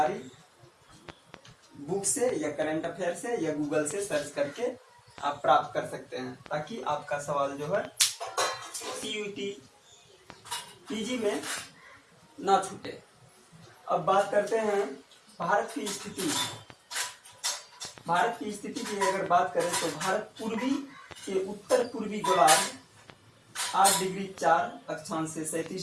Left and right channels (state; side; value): identical; both; correlation 1.00